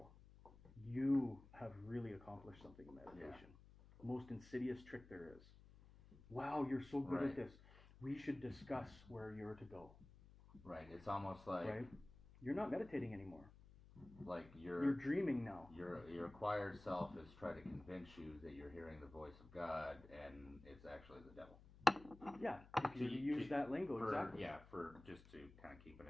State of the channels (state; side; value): noise; left; hum, 20 dB below the sound